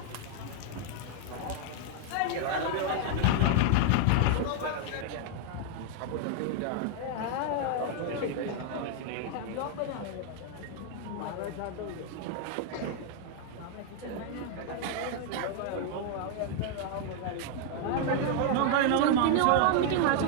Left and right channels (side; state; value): both; different; correlation 0.00